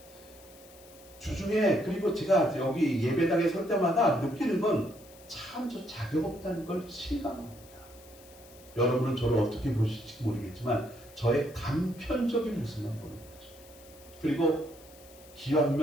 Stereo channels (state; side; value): noise; left; hiss, 23 dB below the sound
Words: 주중에 그리고 제가 여기 예배당에 설 때마다 느끼는 건 참 저 자격 없다는 걸 실감합니다. 여러분은 저를 어떻게 보실지 모르겠지만 저의 단편적인 모습만 보는 거죠. 그리고